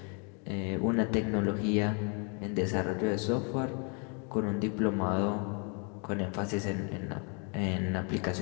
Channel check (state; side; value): quieter; right; 36.6 dB